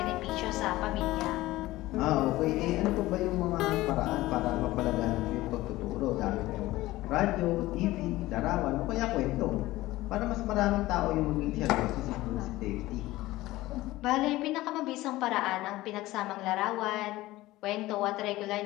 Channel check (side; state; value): right; quieter; 17.6 dB